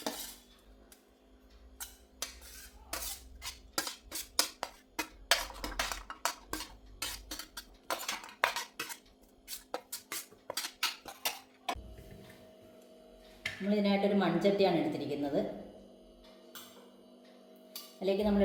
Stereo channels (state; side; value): identical; both; correlation 1.00